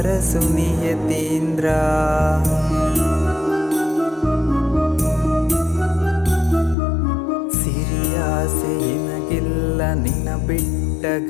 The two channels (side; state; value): right; drops out; at 6.8 s